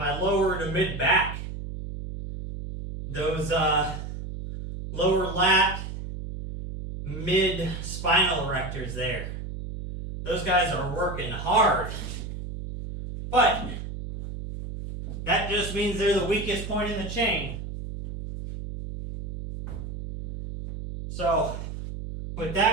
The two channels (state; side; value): noise; right; hum, 8 dB below the sound